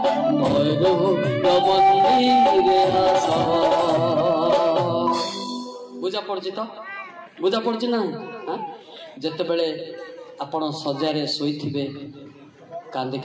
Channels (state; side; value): identical; both; correlation 1.00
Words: मंदिरे आस बुझा पड़ी तो बुझा पड़ी ना जिते बड़े आपण सजारे शोथे कांदी